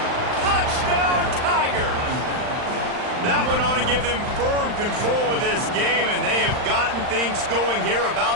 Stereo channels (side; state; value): left; late; 39 ms